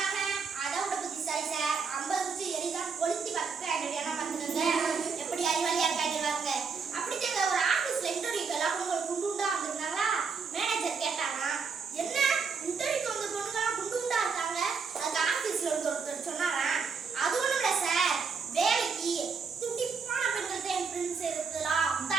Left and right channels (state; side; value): quieter; left; 5.4 dB